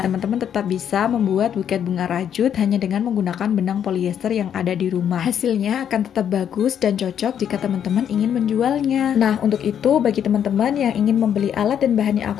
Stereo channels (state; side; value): quieter; right; 9.0 dB